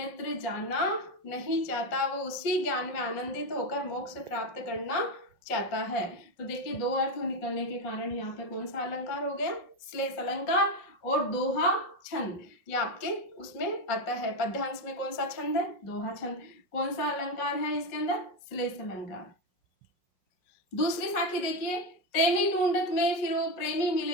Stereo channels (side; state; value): right; late; 5.5 ms